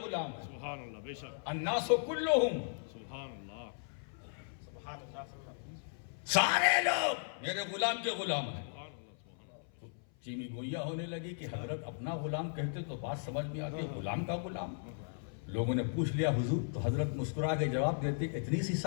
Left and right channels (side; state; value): right; silent; 53 dB below the other